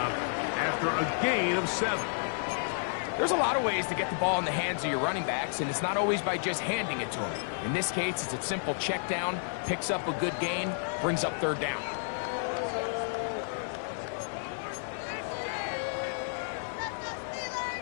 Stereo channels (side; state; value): right; silent; 57 dB below the other